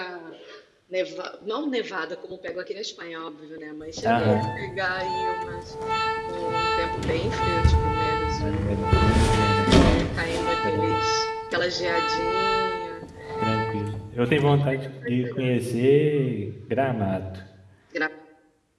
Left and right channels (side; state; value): both; identical; correlation 1.00